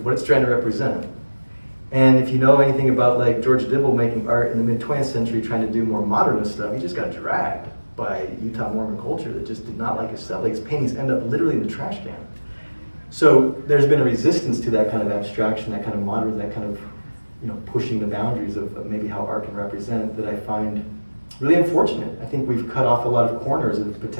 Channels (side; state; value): both; inverted; correlation -1.00